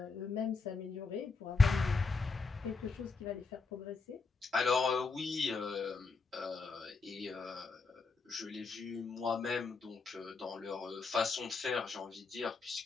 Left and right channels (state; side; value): quieter; right; 4.2 dB